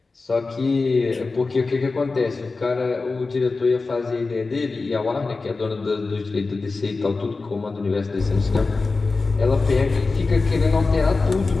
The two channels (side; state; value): right; quieter; 3.9 dB